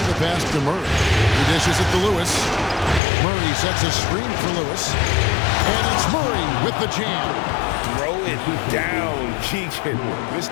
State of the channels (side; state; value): right; drops out; at 3.0 s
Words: the pass to Murray. He dishes it to Lewis. Murray sets a screen for Lewis. And it's Murray with the jam. Throw it down, Keegan.